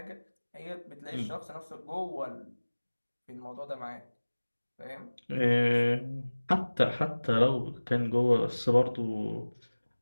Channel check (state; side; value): inverted; both; correlation -1.00